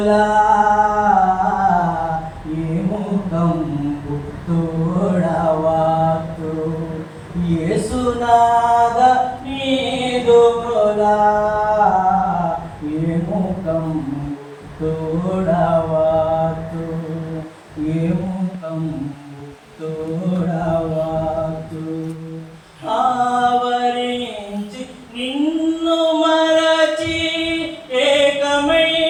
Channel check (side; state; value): both; identical; correlation 1.00